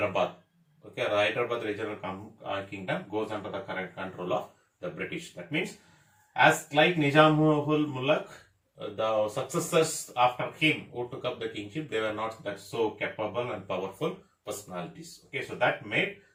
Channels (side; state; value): both; identical; correlation 1.00